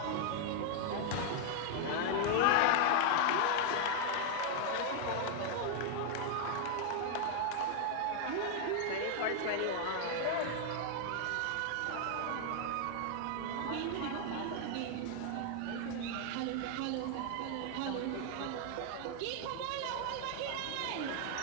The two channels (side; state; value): both; different; correlation 0.00